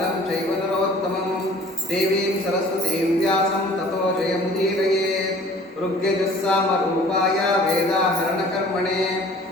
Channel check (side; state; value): both; normal; correlation 0.50